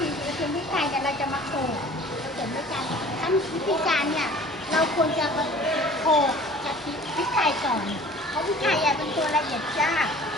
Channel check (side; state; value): both; normal; correlation 0.47